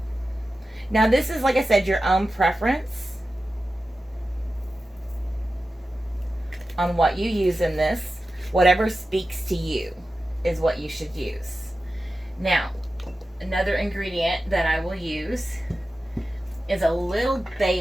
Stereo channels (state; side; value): normal; both; correlation 0.93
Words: Now this is, like I said, your own preference on what you use in this. Whatever speaks to you is what you should use. Now, another ingredient that I will use is a little